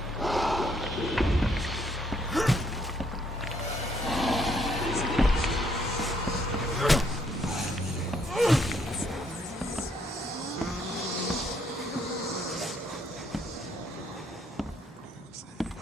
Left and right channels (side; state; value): both; normal; correlation 0.70